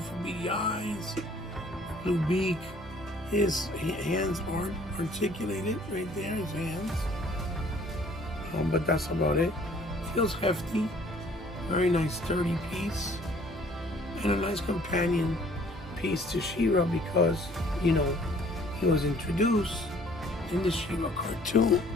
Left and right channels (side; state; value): both; normal; correlation 0.56